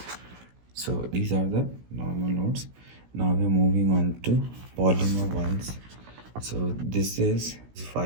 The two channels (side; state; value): left; late; 16 ms